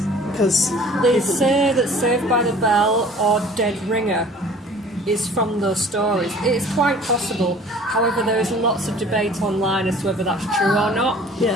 because they say that Saved by the Bell or Dead Ringer is from those stories. It is quite possible. However, there is lots of debate online as to whether that's true or not.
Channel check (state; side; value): normal; both; correlation 0.49